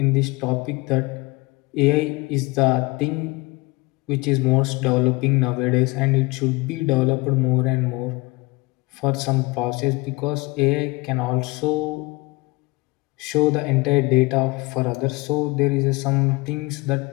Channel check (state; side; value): quieter; right; 23.8 dB